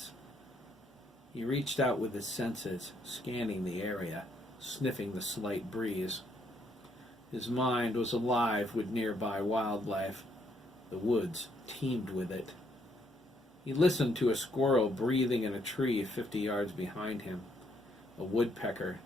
He reached out with his senses, scanning the area, sniffing the slight breeze. His mind was alive with nearby wildlife. The woods teemed with it. He listened to a squirrel breathing in a tree 50 yards behind him, a woodpecker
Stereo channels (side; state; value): both; normal; correlation 0.72